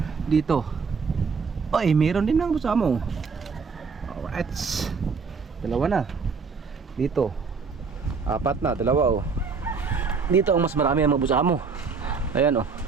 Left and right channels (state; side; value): quieter; left; 5.1 dB